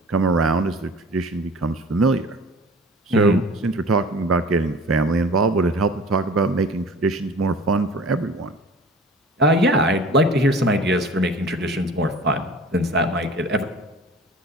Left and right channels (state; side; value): normal; both; correlation 0.43